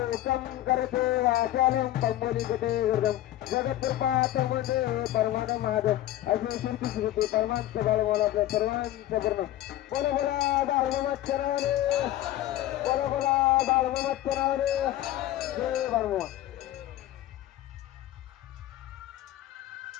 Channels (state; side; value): quieter; right; 14.2 dB